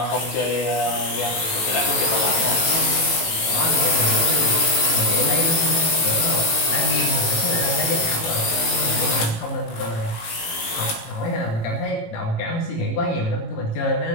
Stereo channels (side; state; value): right; late; 18 ms